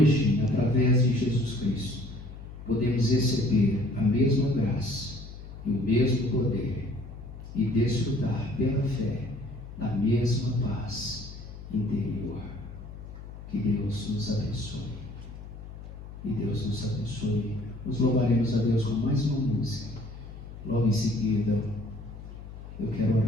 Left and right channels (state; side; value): noise; left; hum, 13 dB below the sound